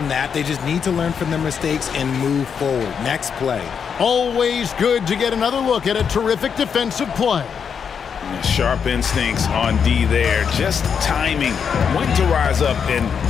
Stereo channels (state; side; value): quieter; right; 6.9 dB